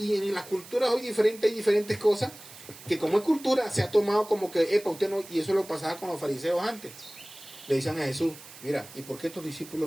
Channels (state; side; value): noise; right; hiss, 18 dB below the sound